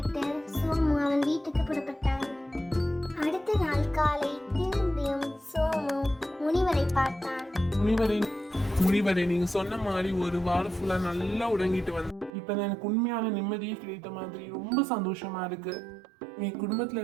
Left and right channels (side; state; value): left; drops out; at 12.3 s